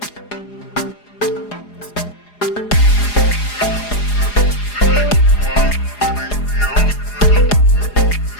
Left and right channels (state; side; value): late; right; 4.9 ms